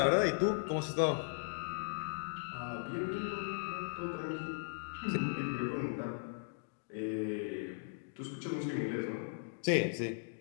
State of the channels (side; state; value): right; silent; digital silence